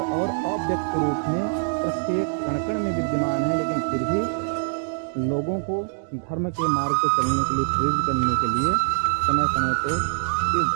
और अव्यक्त रूप में प्रत्येक कण-कण में विद्यमान है, लेकिन फिर भी लोगों को धर्म के मार्ग पर चलने के लिए, प्रेरित करने के लिए समय समय पे इस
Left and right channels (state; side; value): silent; left; digital silence